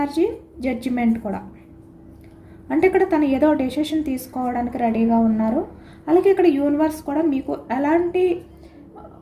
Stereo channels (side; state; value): both; identical; correlation 1.00